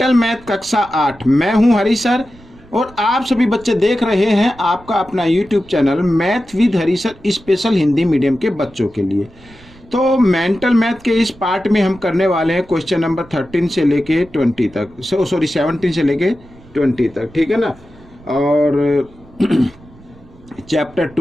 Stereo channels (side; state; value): right; noise; rumble, 24 dB below the sound